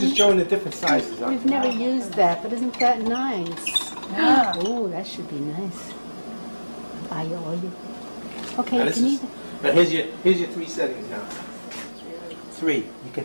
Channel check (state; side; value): inverted; both; correlation -1.00